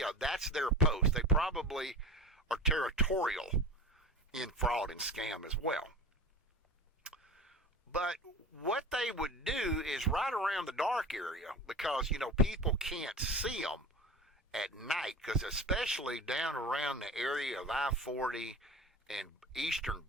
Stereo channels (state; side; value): normal; both; correlation 0.34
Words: that's their post. They probably are territorial in fraud and scam as well. But what they would do is right around the dark area, because, people can't see them at night, because especially down around the area of I-40 and Eastern